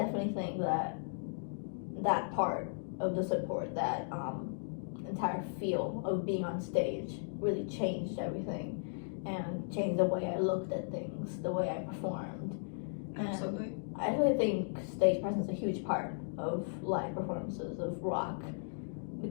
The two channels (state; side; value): silent; right; digital silence